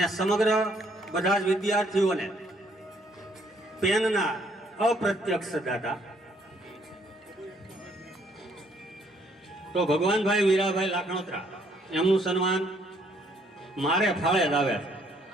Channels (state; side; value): normal; both; correlation 0.67